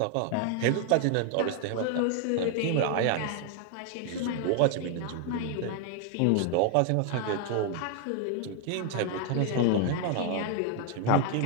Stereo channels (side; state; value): both; different; correlation 0.00